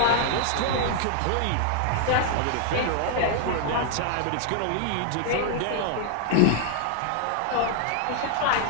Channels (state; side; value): different; both; correlation 0.00